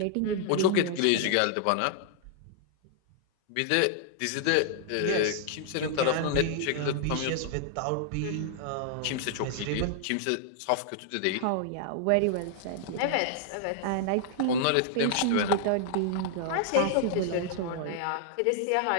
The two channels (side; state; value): both; different; correlation -0.01